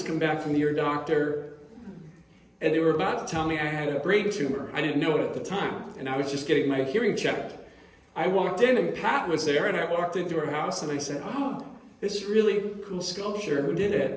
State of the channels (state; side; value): identical; both; correlation 1.00